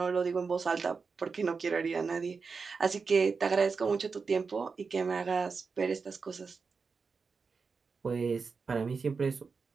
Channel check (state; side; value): quieter; left; 5.0 dB